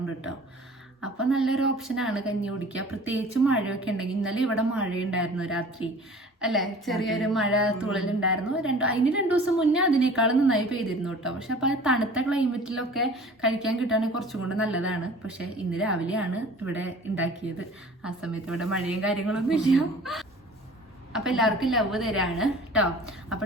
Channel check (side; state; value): both; normal; correlation 0.45